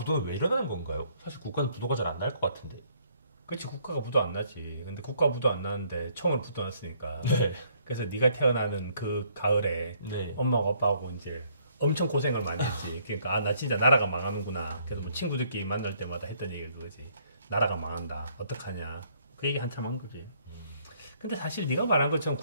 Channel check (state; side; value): inverted; both; correlation -0.65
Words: 왜 일어나는 건가요? 사실 국가는 부도가 잘 안 날 것 같은데. 그렇지, 국가가 부도 안 나지. 근데 국가 부도 안 나는데 총으로 부도 났으니까. 네. 그래서 네가 태어나는 그 가을에 네. 엄마하고 아빠하고 이제 엄청 고생을 많이 했지. 그러니까 아, 나 진짜 나라가 망하는구나. 그래서 뭐 친구들끼리 만날 때마다 했던 얘기가 그거지. 나라가 망한다. 어떡하냐. 그 얘기 한참 한 거지. 근데 사실 네가 말한 것처럼